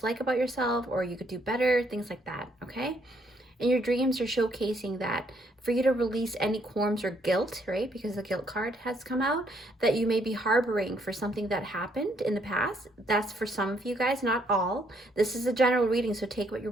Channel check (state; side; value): normal; both; correlation 0.70